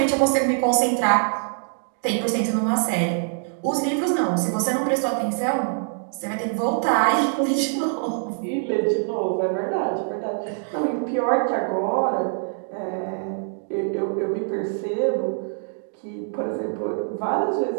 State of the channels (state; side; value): silent; left; digital silence